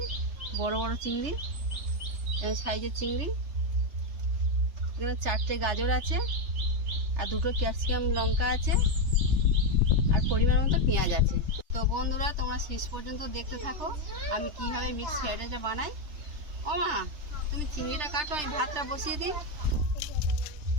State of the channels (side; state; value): left; late; 3.3 ms